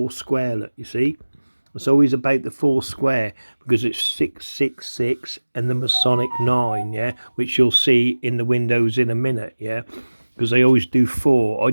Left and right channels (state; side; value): inverted; both; correlation -1.00